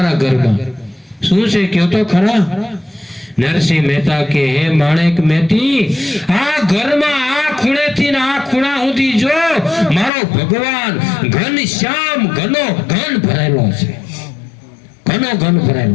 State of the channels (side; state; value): right; drops out; at 10.1 s